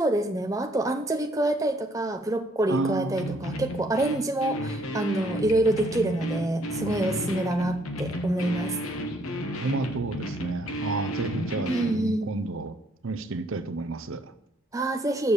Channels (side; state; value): both; normal; correlation 0.66